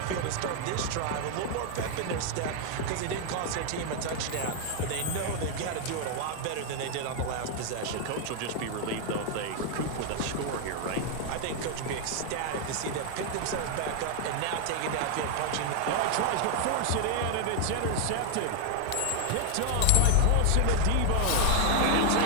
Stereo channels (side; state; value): both; different; correlation 0.00